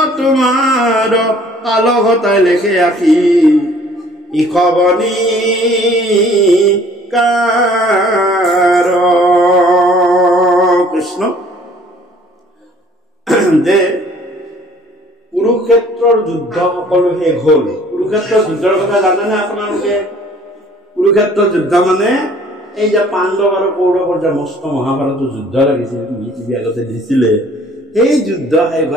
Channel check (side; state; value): both; normal; correlation 0.55